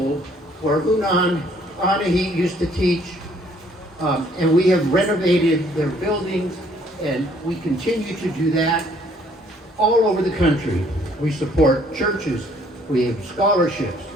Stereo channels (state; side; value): normal; both; correlation 0.62